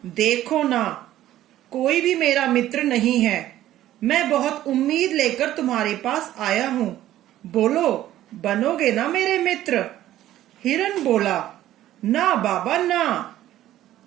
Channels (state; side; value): quieter; left; 13.5 dB